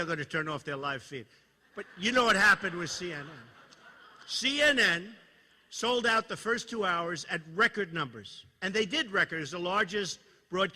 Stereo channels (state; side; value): identical; both; correlation 1.00